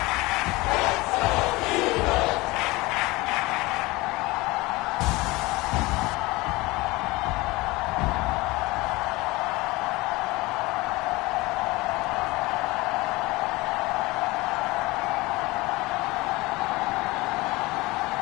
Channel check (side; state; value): right; quieter; 21.9 dB